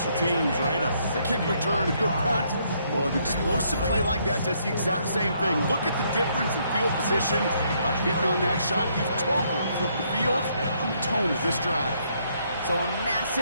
teams, right? A kick return, a good punt. Well, an explosive play like that does the exact same thing. Look at the difference in field position. By hitting on that shot, you've totally flipped the field on the tone of this drive. So a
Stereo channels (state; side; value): inverted; both; correlation -0.71